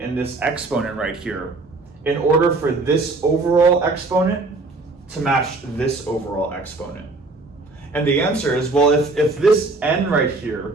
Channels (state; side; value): quieter; left; 3.4 dB